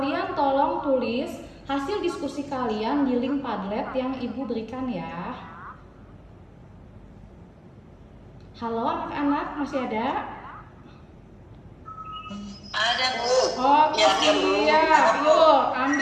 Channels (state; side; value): identical; both; correlation 1.00